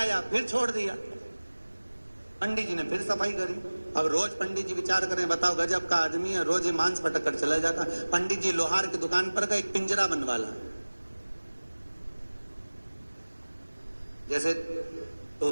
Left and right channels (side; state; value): both; inverted; correlation -1.00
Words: फिर छोड़ दिया। पंडित जी ने फिर सफाई करी। अब रोज पंडित जी विचार करें, बताओ गजब का आदमी है, रोज ये मांस पटक कर चला जाता। पंडित जी लोहार की दुकान पर गए, एक पिंजरा बनवा ला। जैसे